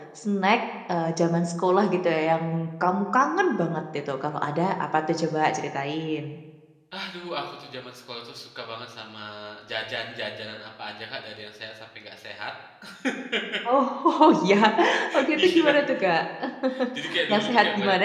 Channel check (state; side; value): identical; both; correlation 1.00